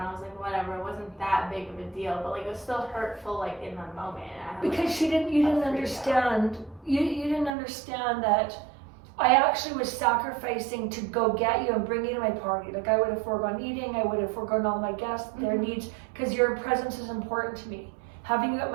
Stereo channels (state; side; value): drops out; left; at 7.5 s